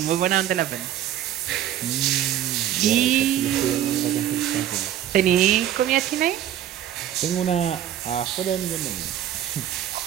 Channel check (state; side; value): quieter; left; 11.2 dB